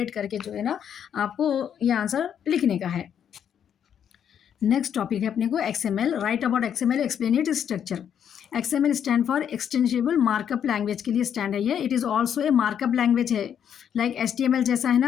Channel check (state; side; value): quieter; right; 8.7 dB